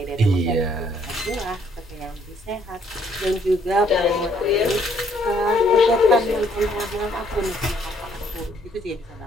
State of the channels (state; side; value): normal; both; correlation 0.66